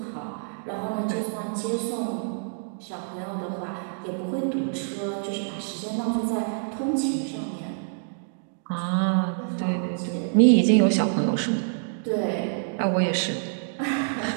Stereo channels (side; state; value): left; silent; digital silence